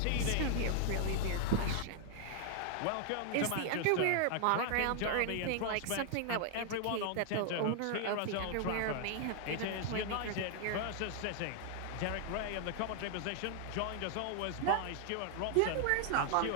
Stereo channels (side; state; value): both; different; correlation 0.00